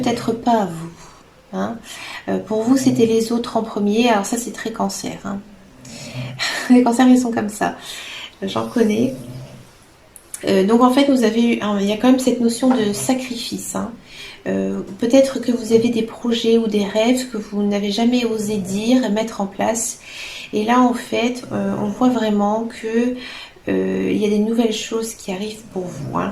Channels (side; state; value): both; identical; correlation 1.00